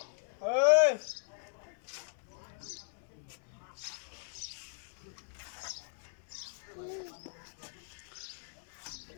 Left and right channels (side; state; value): right; silent; digital silence